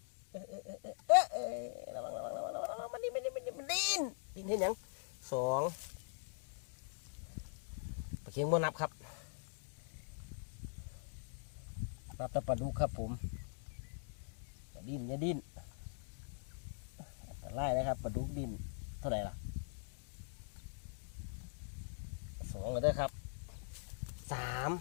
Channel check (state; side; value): silent; right; digital silence